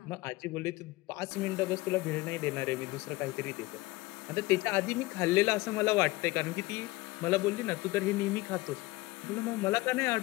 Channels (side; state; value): right; quieter; 20.6 dB